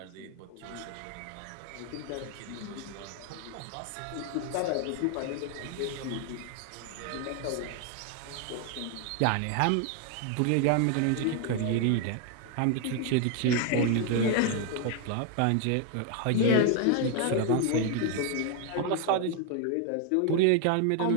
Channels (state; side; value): different; both; correlation 0.00